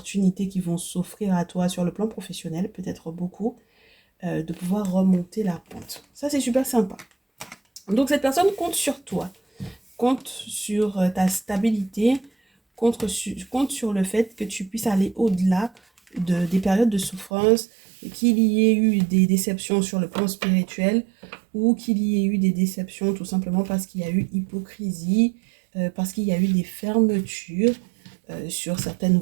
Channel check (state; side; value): drops out; left; at 17.3 s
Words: qui vont s'offrir à toi sur le plan professionnel, peut-être beaucoup, de pouvoir remonter la pente. Ça, c'est super sympa. Donc cette personne compte sur toi, compte sur ta stabilité, compte sur le fait que tu puisses aller au-delà des périodes de souffrance, qu'il y ait eu des déceptions sur le plan spirituel ou qu'il y ait eu des déceptions tout simplement parce qu'il y a eu hypocrisie, parce qu'il y a eu des fermetures sur certaines